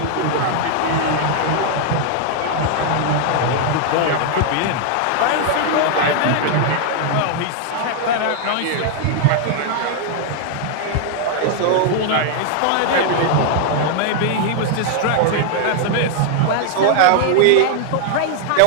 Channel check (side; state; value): both; different; correlation 0.00